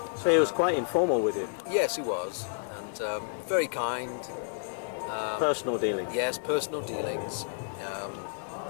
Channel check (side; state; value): right; silent; digital silence